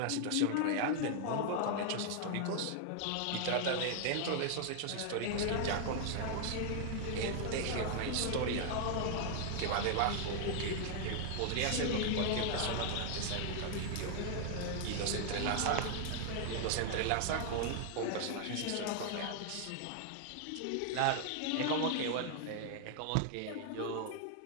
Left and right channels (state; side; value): different; both; correlation 0.00